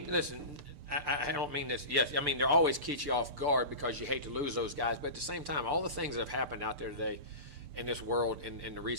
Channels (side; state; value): left; late; 6.8 ms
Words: listen, I don't mean this. Yes, I mean, they're always keep you off guard because you hate to lose those guys. But at the same time, all the things that have happened out there today in this world in the